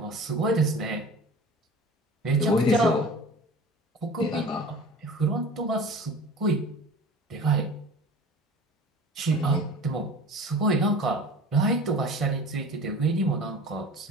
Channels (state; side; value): normal; both; correlation 0.39